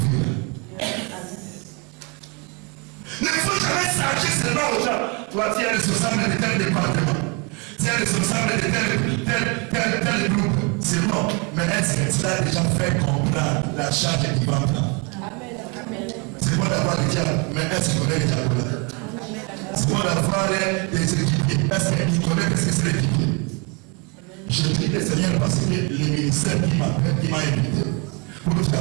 Ne faut jamais s'arracher seulement aux gens. Toi, tu es responsable de tel département. Tu es responsable de tel groupe. C'est bon. Mais est-ce que tu as déjà fait comprendre la charge qui va prendre? C'est bon d'avoir des diables, mais est-ce qu'il connaît les diables là? C'est bon d'avoir des équipiers. Est-ce qu'il connaît ce que c'est l'équipier? Je prie le Seigneur parce que le ministère qui m'appelle, qui m'a invité pour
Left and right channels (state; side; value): quieter; left; 31.8 dB